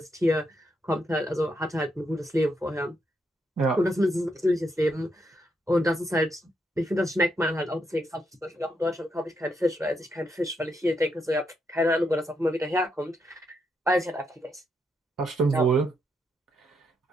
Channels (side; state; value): both; normal; correlation 0.79